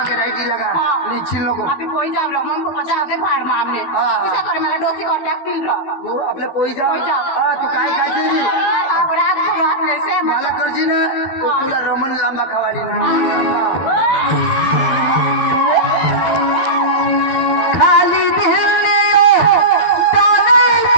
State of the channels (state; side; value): late; right; 12 ms